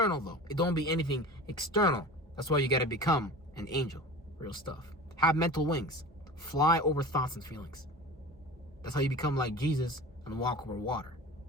though. It don't be anything external. That's why you gotta become an angel. Real stuff. Have mental wings. Fly over thoughts and feelings. That's how you become like Jesus and walk over water.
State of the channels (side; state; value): both; normal; correlation 0.35